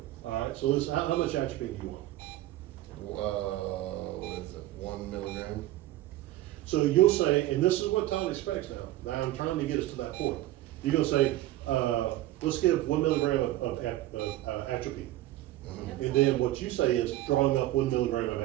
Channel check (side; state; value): left; quieter; 15.4 dB